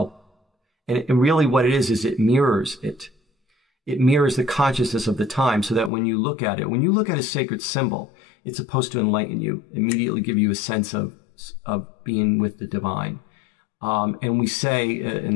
And really what it is it mirrors it. It mirrors the consciousness of the time, so that when you look at it, when you look at a sacred symbol, it's supposed to enlighten you, immediately give you a sense of being with the divine. And we say in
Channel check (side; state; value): right; drops out; at 5.9 s